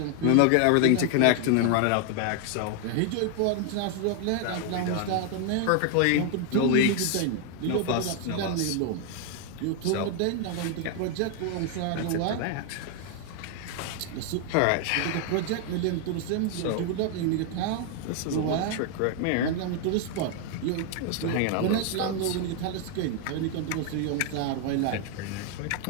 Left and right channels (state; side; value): different; both; correlation 0.00